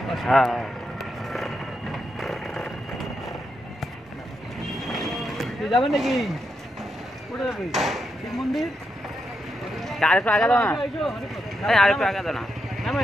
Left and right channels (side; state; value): both; normal; correlation 0.83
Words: হ্যাঁ, যাবেন নাকি? কোথায় যাবে? শিব মন্দির? আরেকটু আগে দাও না, আরেকটু আগে দাও না,